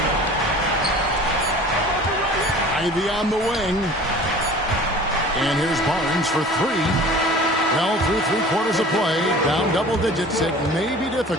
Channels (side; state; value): both; normal; correlation 0.43